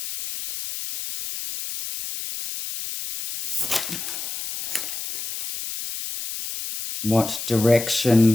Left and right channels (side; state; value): left; noise; hiss, 6 dB below the sound